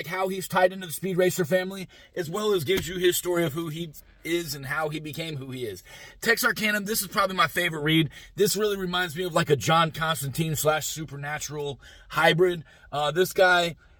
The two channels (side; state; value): both; identical; correlation 1.00